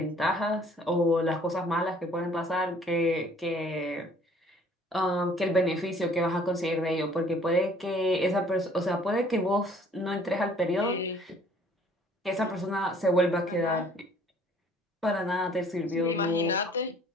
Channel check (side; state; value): both; normal; correlation 0.56